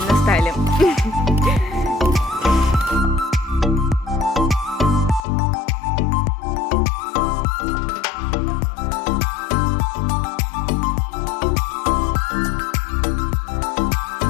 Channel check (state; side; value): drops out; right; at 5.2 s